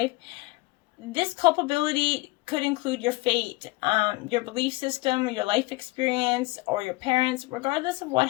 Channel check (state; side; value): quieter; right; 22.7 dB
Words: this culpability could include your fate, your belief system, your life experience, or your parents. Regardless of what